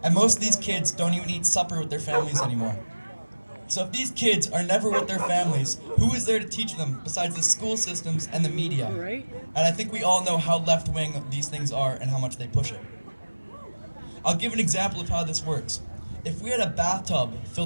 And most of these kids don't even eat supper with their families anymore. So if these kids are never with their families, who is there to teach them besides the school systems and the media? Right. And I think we all know how left-wing these things are and how much they push it. I'll give an example of how this works. If we had a bathtub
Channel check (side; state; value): both; inverted; correlation -1.00